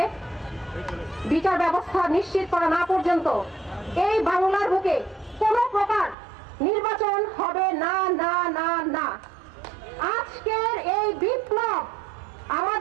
বিচার ব্যবস্থা নিশ্চিত করা না পর্যন্ত এই বাংলার বুকে কোনো প্রকার নির্বাচন হবে না না না না। আজকের এই বিপ্লব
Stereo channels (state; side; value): drops out; left; at 6.2 s